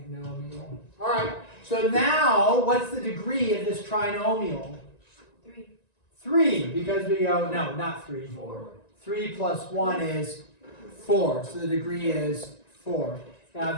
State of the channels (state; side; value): late; right; 1.9 ms